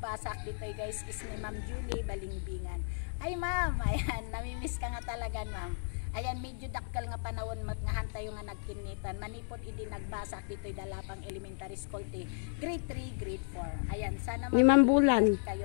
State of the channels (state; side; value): silent; right; digital silence